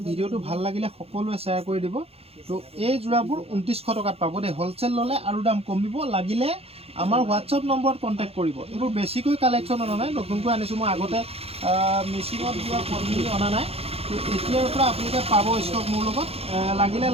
ভিডিঅ'টো ভাল লাগিলে সকলোৱে শ্বেয়াৰ কৰি দিব। তো এই যোৰাবোৰ 2900 টকাত পাব দেই। হ'লচেল ল'লে আৰু দাম কমিব, লাগিলে আমাৰ হোৱাটছআপ নম্বৰত কণ্টেক্ট কৰিব। এইবোৰ বেছিকৈ কালেকশ্যন অনা নাই, নতুনকৈ আনিছোঁ মই, আগতে মেচিনত যোৱা পদ্ধতি অনা নাই। তো এতিয়াৰ পৰা আপোনালোকে পাব ষ্টক মোৰ লগত, লাগিলে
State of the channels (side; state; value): left; late; 0.29 ms